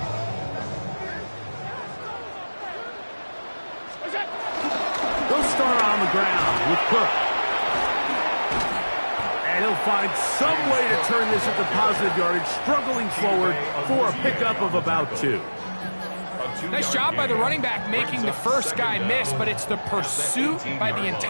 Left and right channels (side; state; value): both; inverted; correlation -1.00